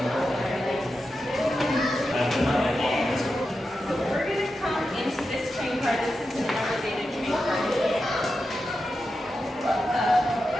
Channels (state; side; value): normal; both; correlation 0.89